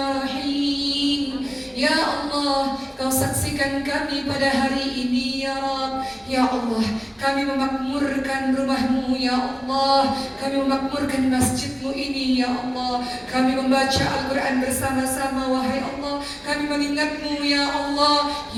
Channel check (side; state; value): both; identical; correlation 1.00